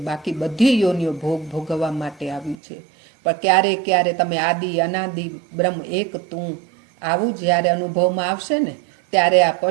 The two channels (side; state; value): left; drops out; at 2.6 s